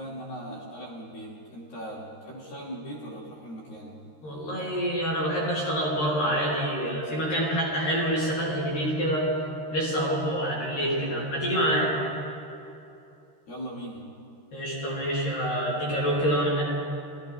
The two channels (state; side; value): late; right; 13 ms